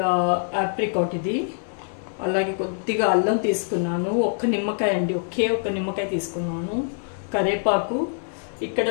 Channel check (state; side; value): silent; right; digital silence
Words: ఆప్రికాట్, ఇది అలాగే కొద్దిగా అల్లం తీసుకున్నాను, ఒక్క నిమ్మకాయ అండి, ఒక్క నిమ్మకాయ తీసుకున్నాను, కరేపాకు. ఇక్కడ